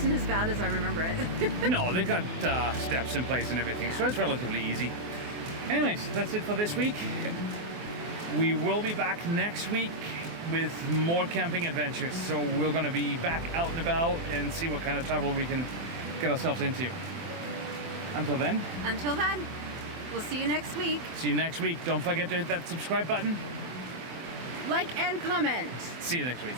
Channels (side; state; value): left; late; 24 ms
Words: as bad as I remember it. No, they got steps in place and everything, so it's relatively easy. Anyways, that's it for this week. We will be back next week with more camping adventures. So we're going to be back out and about and see what kind of travel we can get ourselves into. Until then, We'll see you next week. see you next week. Don't forget to hit that subscribe button. Like and comment. See you next week.